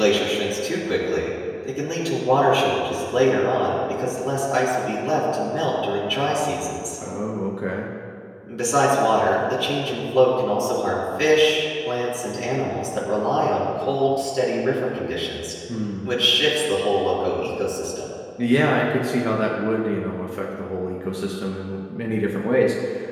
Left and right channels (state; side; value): identical; both; correlation 1.00